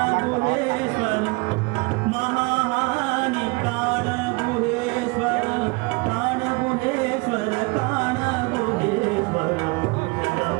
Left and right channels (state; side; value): quieter; left; 27.5 dB